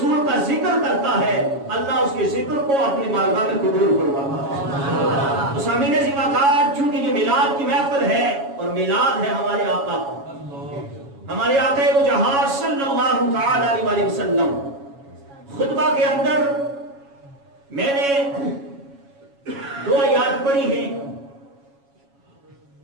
کا ذکر کرتا ہے، اللہ اس کے ذکر کو اپنی بارگاہ میں قبول فرماتا ہے. تو سامعین زیباکار، چونکہ یہ میلاد کی محفل ہے اور میلاد ہے ہمارے آقا کا، ہمارے آقا وہ جہاں صلی اللہ تعالی علیہ وسلم. خطبہ کے اندر میں نے 2 آیات پڑھی ہیں.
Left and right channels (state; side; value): late; left; 7.2 ms